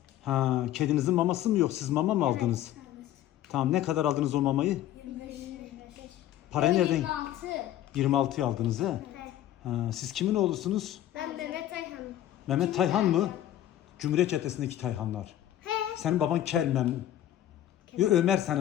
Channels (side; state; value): right; quieter; 12.5 dB